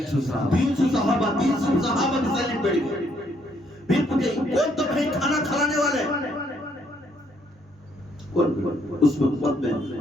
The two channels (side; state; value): both; normal; correlation 0.70